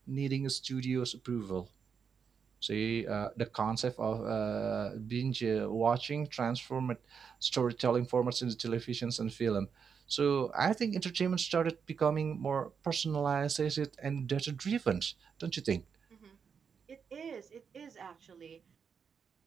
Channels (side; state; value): left; quieter; 6.5 dB